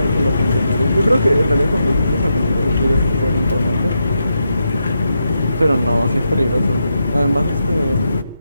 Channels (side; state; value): both; inverted; correlation -0.84